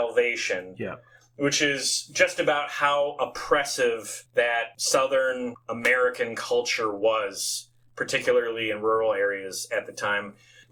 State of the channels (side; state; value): both; identical; correlation 1.00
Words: Yeah. Which is just about how oppressive that Southern American culture was, particularly in rural areas at the time.